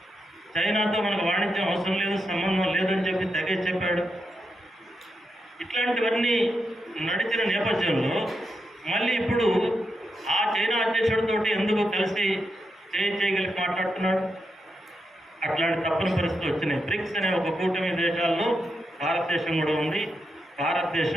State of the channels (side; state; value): both; normal; correlation 0.85